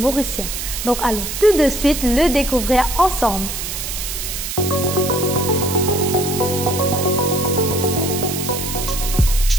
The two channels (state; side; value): noise; right; hiss, 5 dB below the sound